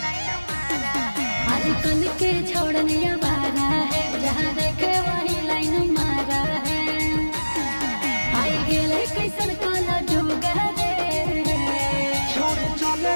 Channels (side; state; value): both; inverted; correlation -1.00